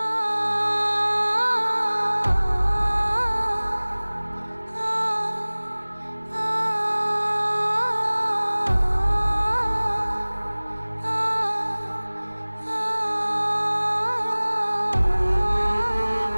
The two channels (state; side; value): inverted; both; correlation -1.00